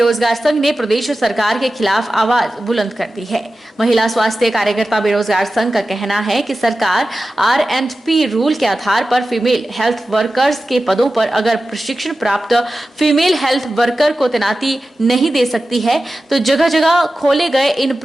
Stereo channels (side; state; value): both; normal; correlation 0.94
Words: संघ ने प्रदेश सरकार के खिलाफ आवाज बुलंद कर दी है। महिला स्वास्थ्य कार्यकर्ता बेरोजगार संघ का कहना है कि सरकार R&P रूल के आधार पर फीमेल हेल्थ वर्कर्स के पदों पर अगर प्रशिक्षण प्राप्त फीमेल हेल्थ वर्कर को तैनाती नहीं दे सकती है तो जगह जगह खोले गए इन